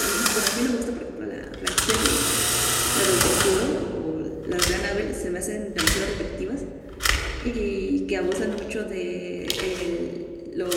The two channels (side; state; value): both; identical; correlation 1.00